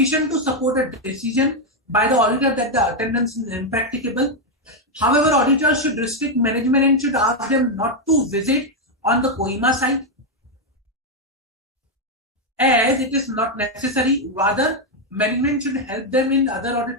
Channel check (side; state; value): both; normal; correlation 0.02